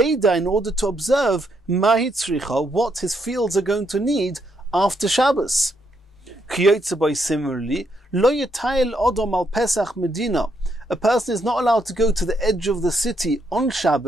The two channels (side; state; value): both; normal; correlation 0.76